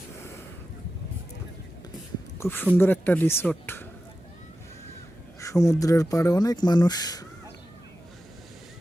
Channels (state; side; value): noise; right; hum, 26 dB below the sound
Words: খুব সুন্দর একটা রিসোর্ট, সমুদ্রের পাড়ে অনেক মানুষ